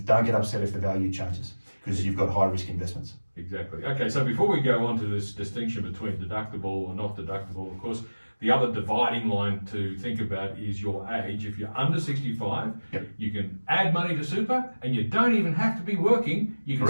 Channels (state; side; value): inverted; both; correlation -1.00